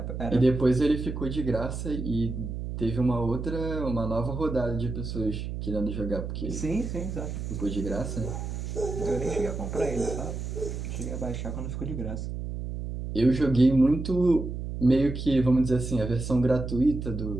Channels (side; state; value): right; noise; hum, 5 dB below the sound